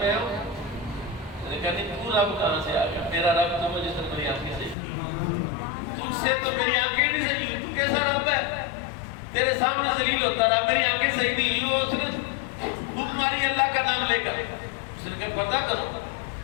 ہوں. اس نے کہا نہیں تو رب کہاں سے آ گیا؟ میرا رب تو وہ جس نے میری آنکھیں صحیح. تم سے تو میری آنکھیں نہیں صحیح, تو کیسا رب ہے؟ تیرے سامنے ذلیل ہوتا رہا, میری آنکھیں صحیح نہیں. وہ اس نے بھوک ماری اللہ کا نام لے کر. اس نے کہا پتہ کرو.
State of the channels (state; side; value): drops out; right; at 4.8 s